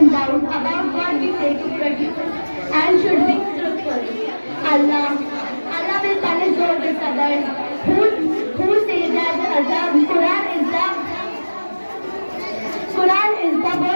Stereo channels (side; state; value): both; inverted; correlation -1.00